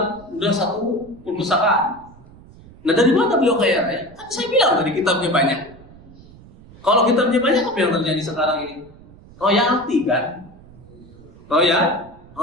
udah 1 perpustakaan. Nah, dari mana beliau kaya raya? Kan saya bilang tadi kitabnya banyak. Kalau kitabnya banyak, apa yang terjadi sekarang ini? Royalti kan?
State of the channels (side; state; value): right; noise; rumble, 22 dB below the sound